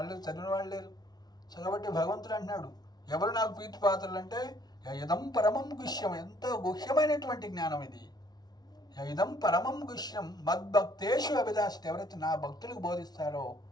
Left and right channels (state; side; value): late; right; 0.19 ms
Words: చదివిన వాళ్ళు లేరు. సో కాబట్టి భగవంతుడు అంటున్నాడు, ఎవరు నాకు ప్రీతి పాత్రలు అంటే యదం పరమం గుహ్యం, ఎంతో గుహ్యమైనటువంటి జ్ఞానం ఇది. యదం పరమం గుహ్యం మద్భక్తేషు అభిదాసిత, ఎవరైతే నా భక్తులకు బోధిస్తారో,